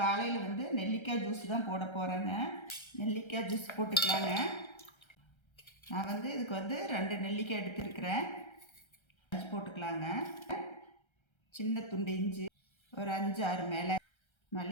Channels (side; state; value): right; late; 1.3 ms